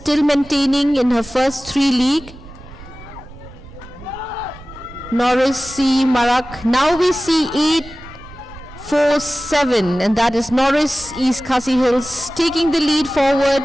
maintaining in her first 3 league. Norris C. Marak, now we see 8-4-7, and that is Norris East Khasi Hills taking the lead forward.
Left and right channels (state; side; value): noise; right; rumble, 18 dB below the sound